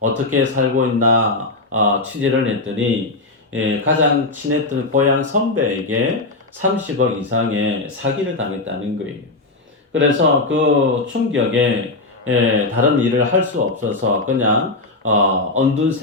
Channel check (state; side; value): quieter; right; 3.1 dB